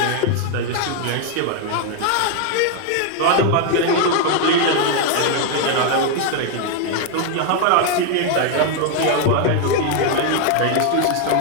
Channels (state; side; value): different; both; correlation 0.01